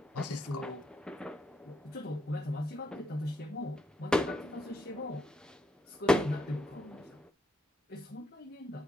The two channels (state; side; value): normal; both; correlation 0.78